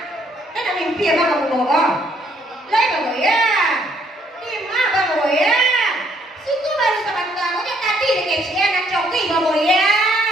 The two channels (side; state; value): both; normal; correlation 0.67